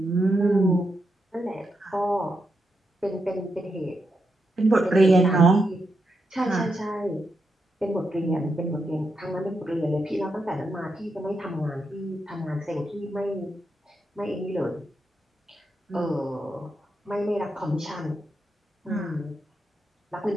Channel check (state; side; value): normal; both; correlation 0.84